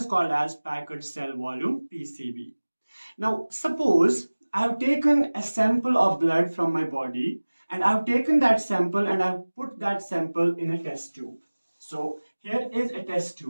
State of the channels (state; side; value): inverted; both; correlation -1.00